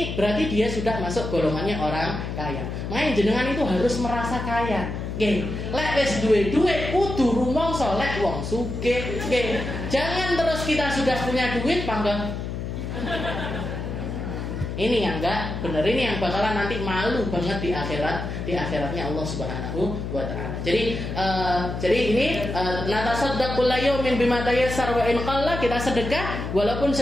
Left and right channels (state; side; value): noise; left; hum, 5 dB below the sound